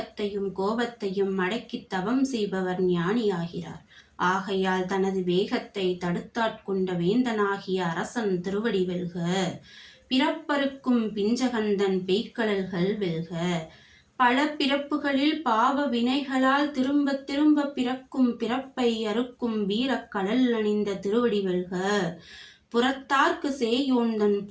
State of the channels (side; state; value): both; identical; correlation 1.00